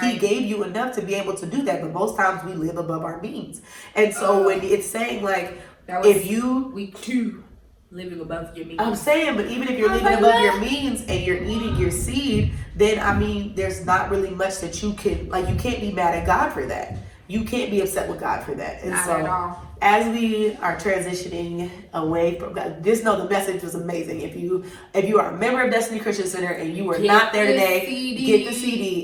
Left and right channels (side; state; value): both; identical; correlation 1.00